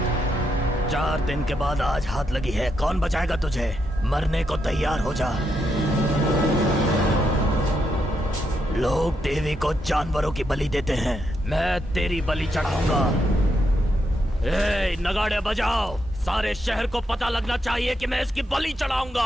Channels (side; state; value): both; normal; correlation 0.81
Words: चार दिन के बाद आज हाथ लगी है, कौन बचाएगा तुझे? मरने को तैयार हो जा। लोग देवी को जानवरों की बलि देते हैं, मैं तेरी बलि चढ़ाऊंगा। ए, नगाड़े बजाओ, सारे शहर को पता लगना चाहिए कि मैं इसकी बलि